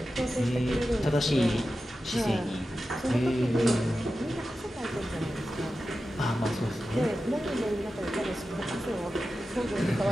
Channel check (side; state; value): both; normal; correlation 0.92